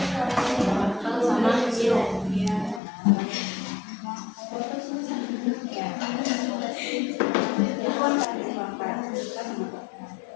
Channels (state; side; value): drops out; right; at 2.8 s